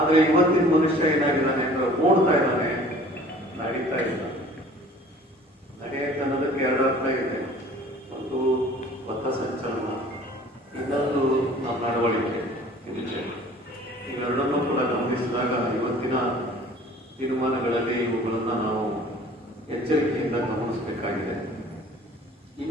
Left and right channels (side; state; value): both; normal; correlation 0.49